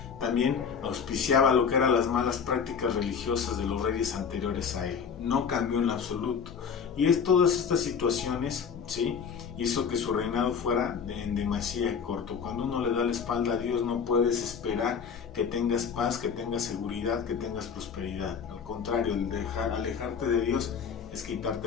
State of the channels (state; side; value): quieter; right; 6.6 dB